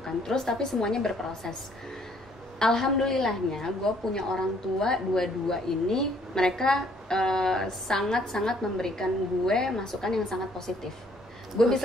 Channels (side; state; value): both; normal; correlation 0.63